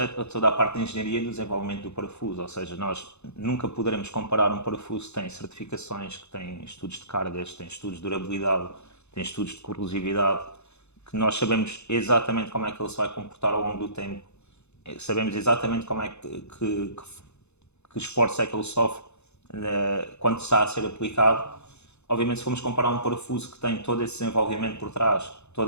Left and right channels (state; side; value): late; right; 0.81 ms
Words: toda a parte de engenharia e do desenvolvimento do parafuso, ou seja, nós nunca poderemos comparar um parafuso que tem certificações, que tem estudos de cargas, tem estudos de durabilidade, tem estudos de corrosividade, que nós sabemos exatamente como é que ele se vai comportar ao longo do tempo, sabemos exatamente como é que esforço é que ele sofre quando está a ser aplicado. Obviamente, se formos comparar um parafuso que tem todo esse desenvolvimento por trás,